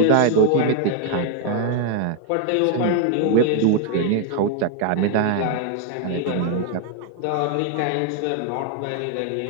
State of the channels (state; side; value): different; both; correlation 0.00